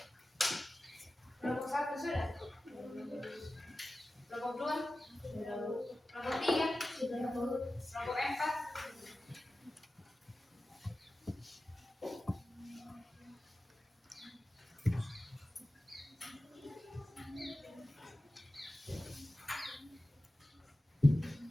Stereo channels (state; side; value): normal; both; correlation 0.95